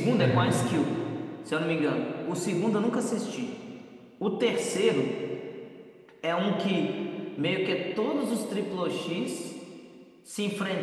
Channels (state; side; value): identical; both; correlation 1.00